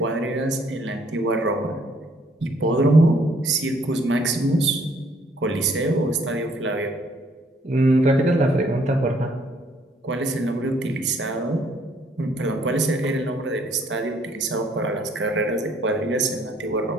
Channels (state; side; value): normal; both; correlation 0.64